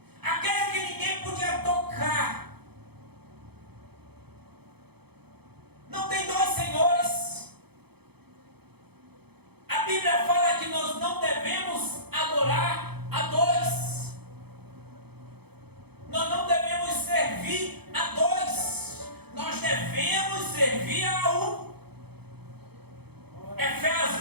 aquele que ninguém podia tocar. Não tem dois senhores. A Bíblia fala que nós não devemos adorar a dois, nós não devemos servir a dois, nós devemos servir a um.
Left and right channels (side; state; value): left; late; 0.97 ms